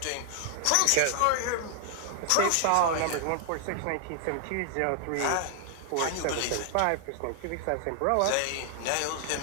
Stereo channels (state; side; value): different; both; correlation 0.00